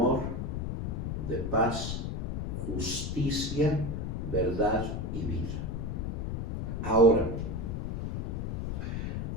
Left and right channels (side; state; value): left; noise; rumble, 3 dB below the sound